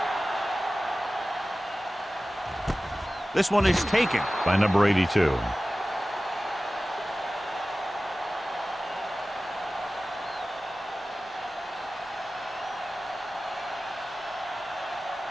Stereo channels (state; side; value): normal; both; correlation 0.96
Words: This one is taken by number 82.